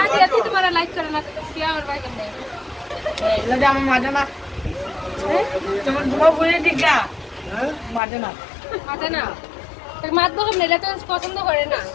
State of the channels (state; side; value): drops out; right; at 8.0 s